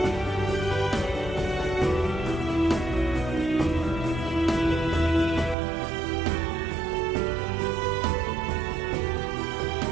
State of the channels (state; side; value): drops out; left; at 5.6 s